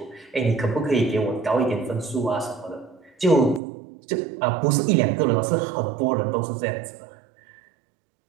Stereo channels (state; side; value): drops out; left; at 3.6 s